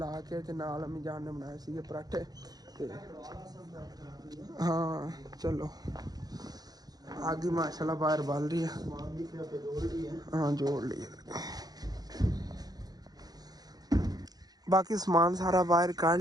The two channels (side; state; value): left; late; 0.19 ms